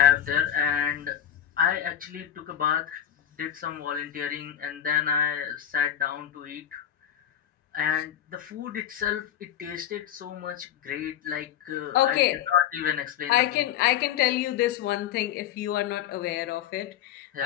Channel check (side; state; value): right; quieter; 10.2 dB